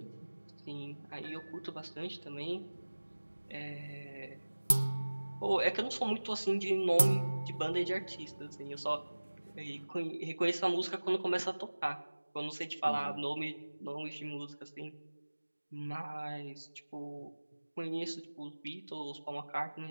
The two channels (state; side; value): inverted; both; correlation -1.00